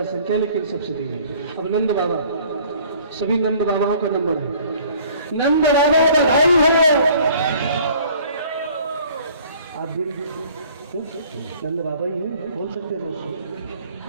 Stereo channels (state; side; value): inverted; both; correlation -0.54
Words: संख्या लेकिन सबसे धीमे। अब नंद बाबा, सभी नंद बाबाओं का नंबर है। नंद बाबा बधाई हो। आप भी नंद बाबा ही हैं, बोल सकते हो।